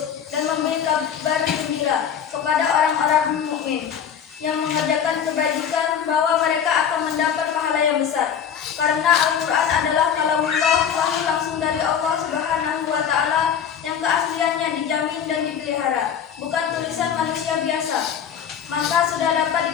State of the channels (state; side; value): quieter; right; 8.1 dB